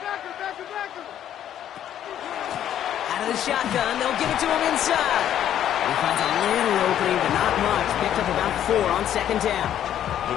Out of the shotgun, they'll give it to him inside. He finds a little opening, but not much. Picked up about 4 on 2nd down.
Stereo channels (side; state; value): right; quieter; 10.7 dB